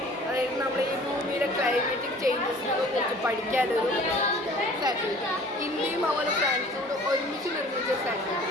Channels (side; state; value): both; normal; correlation 0.49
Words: അതായത് നമ്മൾ ഈ ഭൂമിയിലെ ക്ലൈമാറ്റിക് ചേഞ്ചസിനെ കുറിച്ച് പഠിക്കാനൊരു സാറ്റലൈറ്റ്. ഇന്ത്യയും അതുപോലെ ഫ്രാൻസോട് ഒരുമിച്ച് നിർമ്മിച്ച